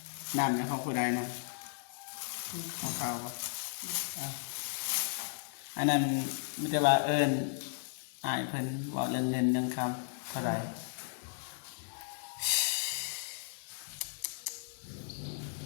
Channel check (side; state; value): right; silent; digital silence